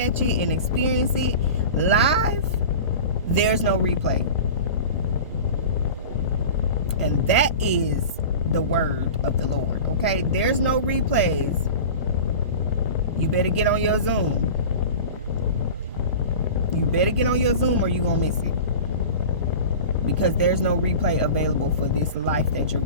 it and experience it live, there's no replay. And that is the word of the Lord. Okay, there's no replays. You better get on your Zoom. You better get on your Zoom, or you gonna miss it. Because there's no replay available for this life that you're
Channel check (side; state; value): both; inverted; correlation -0.35